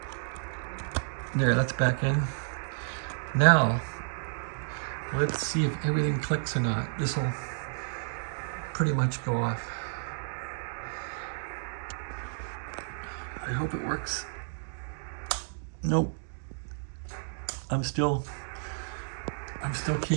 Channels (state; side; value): silent; left; digital silence